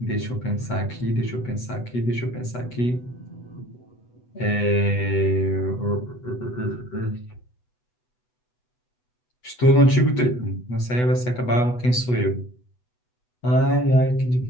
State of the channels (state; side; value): late; right; 8.1 ms